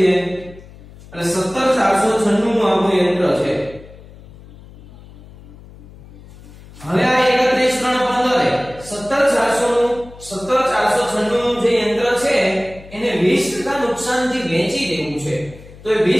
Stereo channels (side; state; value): left; noise; hum, 20 dB below the sound